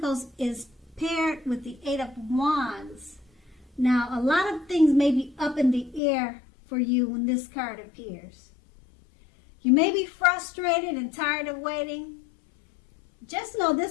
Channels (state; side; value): drops out; right; at 6.0 s